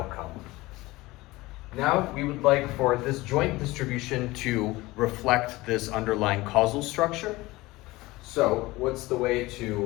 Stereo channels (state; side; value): quieter; right; 20.1 dB